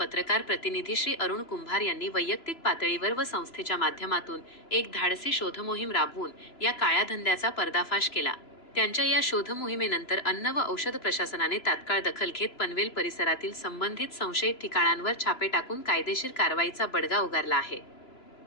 प्रतिनिधी श्री अरुण कुंभार यांनी वैयक्तिक पातळीवर व संस्थेच्या माध्यमातून एक धाडसी शोध मोहीम राबवून या काळ्या धंद्याचा पर्दाफाश केला. त्यांच्या या शोध मोहिमेनंतर अन्न व औषध प्रशासनाने तात्काळ दखल घेत पनवेल परिसरातील संबंधित संशयित ठिकाणांवर छापे टाकून कायदेशीर कारवाईचा बडगा उगारला आहे.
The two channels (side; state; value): right; late; 3.0 ms